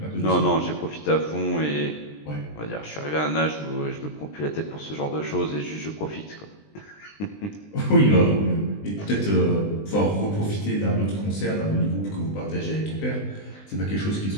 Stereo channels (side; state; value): right; late; 20 ms